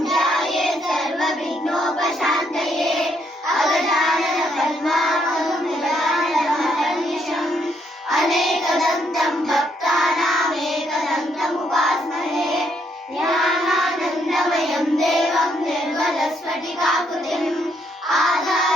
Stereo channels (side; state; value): both; normal; correlation 0.73